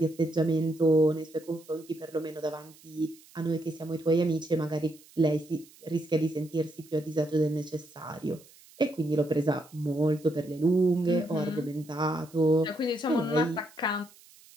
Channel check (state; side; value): noise; right; hiss, 25 dB below the sound